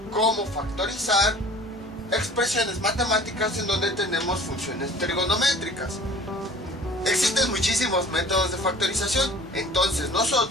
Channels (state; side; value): normal; both; correlation 0.46